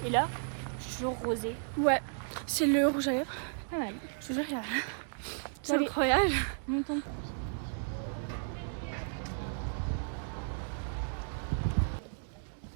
Et là, je suis toujours rosée. Ouais, c'est le rouge à lèvres. Ouais. Je te jure, regarde. C'est Oui. incroyable.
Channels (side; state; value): left; silent; digital silence